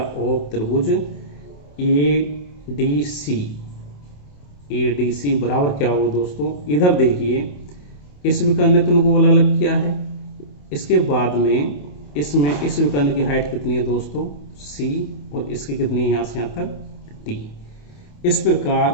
त्रिभुज ADC बराबर क्या होगा दोस्तों। इधर देखिए इस विकर्ण ने तो उनको अलग अलग किया है, इसके बाद में इसमें इस विकर्ण की हाइट कितनी है दोस्तों C, और इसकी कितनी है यहाँ से यहाँ तक D। इस प्रकार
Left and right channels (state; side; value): late; right; 28 ms